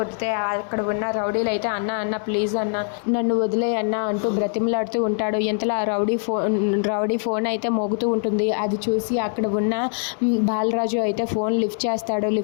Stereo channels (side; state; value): right; silent; 59 dB below the other